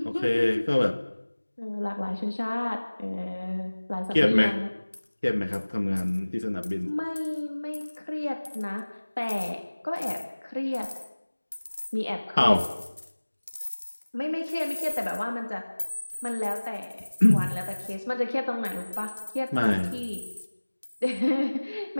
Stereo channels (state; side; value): inverted; both; correlation -1.00